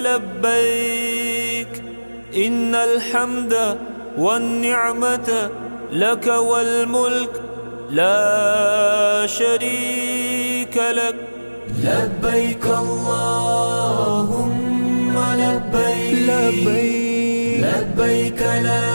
إن الحمد والنعمة لك والملك لا شريك لك لبيك اللهم لبيك لبيك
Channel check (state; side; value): inverted; both; correlation -1.00